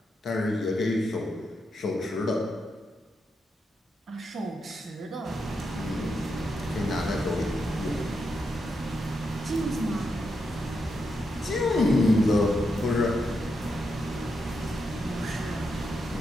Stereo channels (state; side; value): normal; both; correlation 0.84